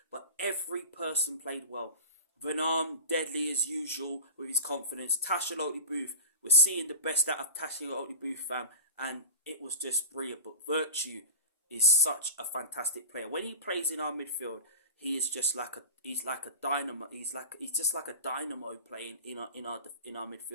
but every person played well. Van Arm, deadly as usual with his confidence. Tashaloti Booth, we're seeing the best out of Tashaloti Booth, fam, and it was just brilliant. But Virtue is such a fantastic player. When he plays in our midfield, he is just like a dynamo. He's just like a dynamo playing in our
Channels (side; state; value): both; inverted; correlation -0.33